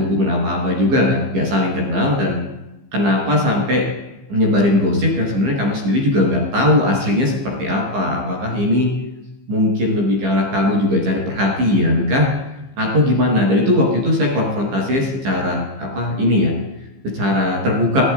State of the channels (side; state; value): left; late; 15 ms